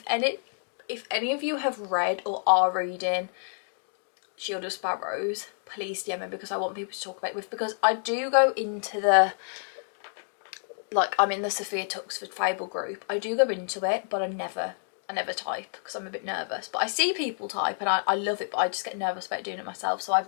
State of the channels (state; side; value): silent; right; digital silence